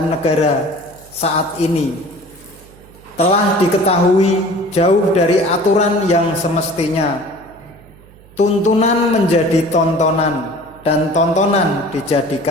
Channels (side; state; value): right; noise; hum, 24 dB below the sound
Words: negara saat ini. Telah diketahui jauh dari aturan yang semestinya. Tuntunan menjadi tontonan dan tontonan